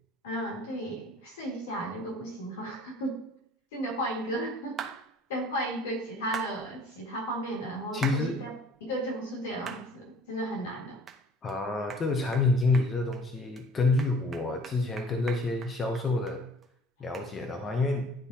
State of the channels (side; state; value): both; normal; correlation 0.51